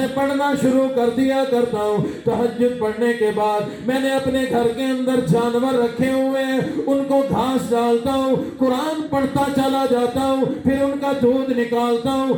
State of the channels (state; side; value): identical; both; correlation 1.00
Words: پڑھنا شروع کر دیا کرتا ہوں۔ تہجد پڑھنے کے بعد میں نے اپنے گھر کے اندر جانور رکھے ہوئے ہیں، ان کو گھاس ڈالتا ہوں، قرآن پڑھتا چلا جاتا ہوں، پھر ان کا دودھ نکالتا